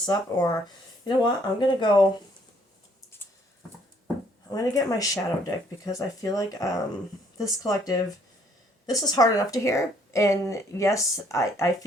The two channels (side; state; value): both; normal; correlation 0.64